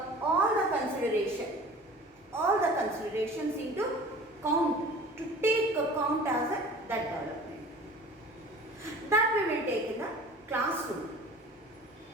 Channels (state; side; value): normal; both; correlation 0.43